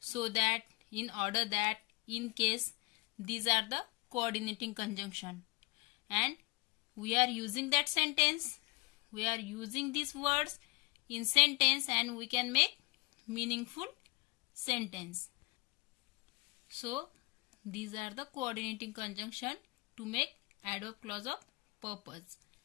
that, in order that, in case. These are the coordinating conjunction, and we are using that sentence, we are using these words in sentence, and we can make meaningful sentence. So these are the coordinating conjunction to make adverb clause of purpose.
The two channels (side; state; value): right; quieter; 25.7 dB